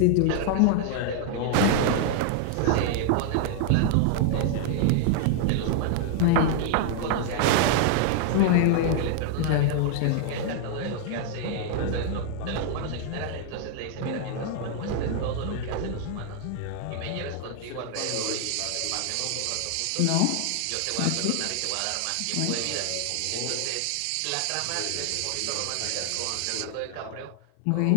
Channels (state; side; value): different; both; correlation 0.00